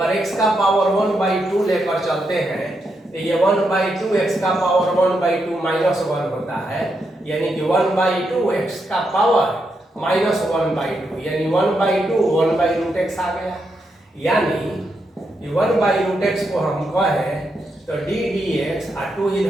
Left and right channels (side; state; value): both; normal; correlation 0.82